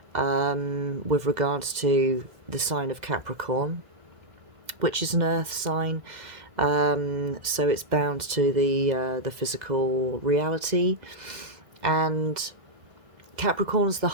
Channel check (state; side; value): late; left; 2.1 ms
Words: with regards to the sign of Capricorn, which is an earth sign, so it's bound to the physical reality. And Capricorn's the